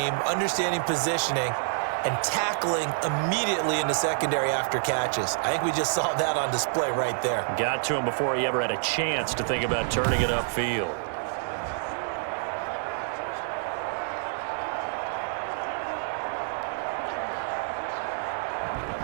understanding positioning, and tackling immediately in the secondary after catches. I think we just saw that on display right there. Got to him before he ever had a chance to think about turning it upfield.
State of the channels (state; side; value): silent; left; digital silence